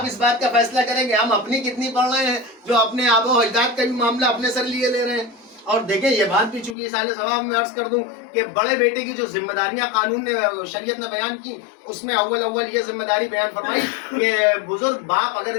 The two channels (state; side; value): drops out; right; at 6.8 s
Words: اس بات کا فیصلہ کریں گے ہم اپنی کتنی پڑھ رہے ہیں، جو اپنے آبا و اجداد کا بھی معاملہ اپنے سر لیے لے رہے ہیں. اور دیکھیں یہ بات بھی چونکہ سال ثواب میں عرض کر دوں کہ بڑے بیٹے کی جو ذمہ داریاں قانون نے شریعت نے بیان کی، اس میں اول یہ ذمہ داری بیان فرمائی کہ بزرگ باپ اگر